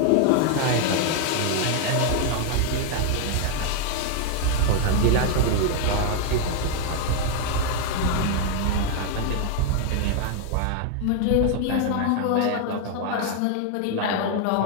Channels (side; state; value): both; different; correlation 0.00